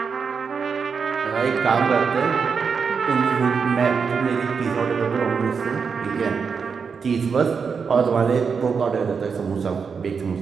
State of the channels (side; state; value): left; quieter; 5.8 dB